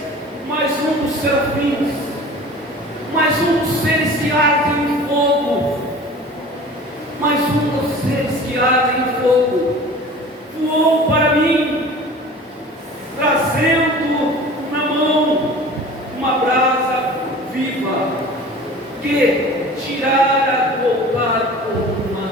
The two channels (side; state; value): both; normal; correlation 0.41